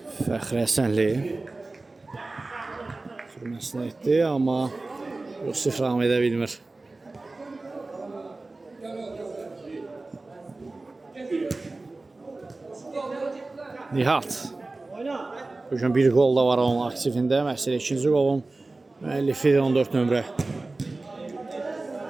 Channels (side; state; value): left; quieter; 3.3 dB